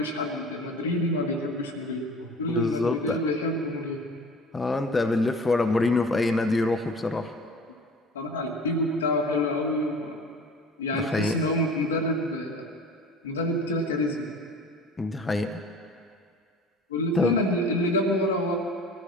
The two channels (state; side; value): normal; both; correlation 0.42